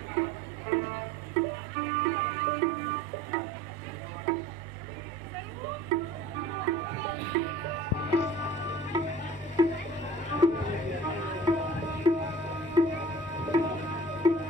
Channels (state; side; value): noise; right; hum, 22 dB below the sound